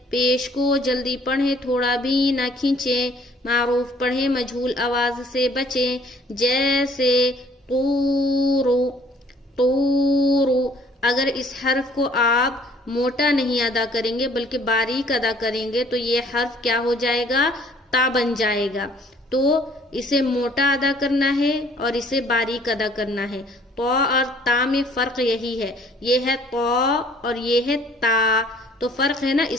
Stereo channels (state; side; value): normal; both; correlation 0.58